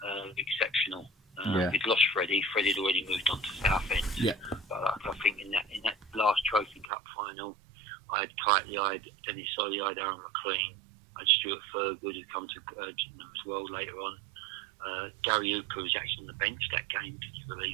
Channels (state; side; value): drops out; left; at 6.9 s